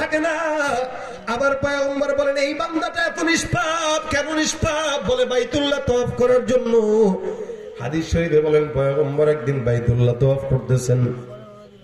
না। আবার পয়গম্বর বলেন এই বান্দাটা এত নিষ্পাপ কেন? নিষ্পাপ বলে বাইতুল্লাহ তওয়াফ করার জন্য। হাদিস শরীফে বলেন পয়গম্বর একদিন বাইতুল্লাহ তওয়াফ করতেছেন,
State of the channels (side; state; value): both; identical; correlation 1.00